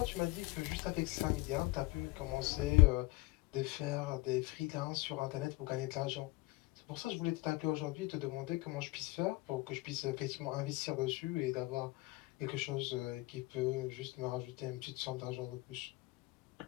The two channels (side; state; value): right; quieter; 21.3 dB